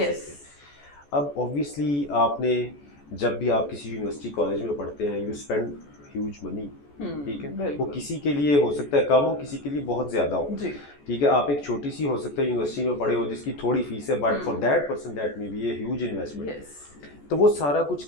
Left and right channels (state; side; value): late; right; 14 ms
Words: हैं। अब ऑब्वियसली आपने जब भी आप किसी यूनिवर्सिटी कॉलेज में पढ़ते हैं, यू स्पेंड ह्यूज मनी, ठीक है। वो किसी के लिए हो सकता है कम हो, किसी के लिए बहुत ज़्यादा हो, ठीक है। आप एक छोटी सी हो सकता है यूनिवर्सिटी में पढ़े हो जिसकी थोड़ी फीस है, but for that person that may be a huge investment. तो वो सारा कुछ